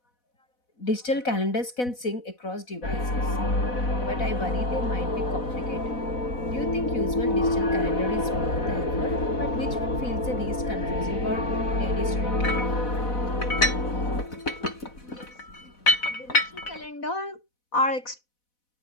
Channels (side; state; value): right; late; 4.1 ms